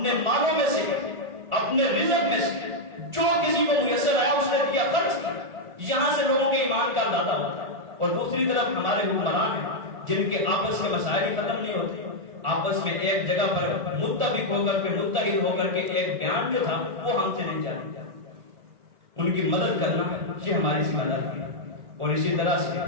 مالوں میں سے اپنے رزق میں سے جو کسی کو میسر آیا اس نے دیا، خرچ کیا۔ یہاں سے لوگوں کے ایمان کا اندازہ ہوتا ہے۔ اور دوسری طرف ہمارے حکمران ہیں جن کے آپس کے مسائل ختم نہیں ہوتے، آپس میں ایک جگہ پر متفق ہو کر کے متحد ہو کر کے ایک بیان جو تھا وہ ہم سے نہیں جانے۔ ان کی مدد کرنا یہ ہماری ذمہ داری ہے، اور اسی طرح سے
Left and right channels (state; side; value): late; left; 1.4 ms